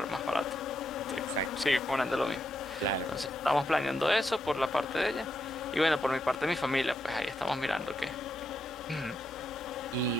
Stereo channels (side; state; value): both; normal; correlation 0.82